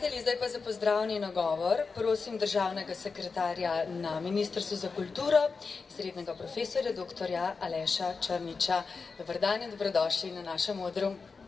zdaj pa za pozdravni nagovor prosim državnega sekretarja na Ministrstvu za kulturo, srednjega profesorja dr. Aleša Črniča. Dober dan in dobrodošli na našem odru.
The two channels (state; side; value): quieter; right; 4.7 dB